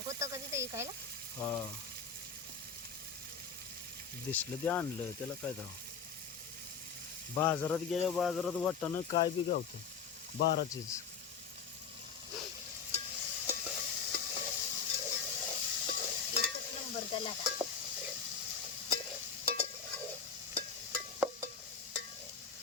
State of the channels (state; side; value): quieter; right; 6.0 dB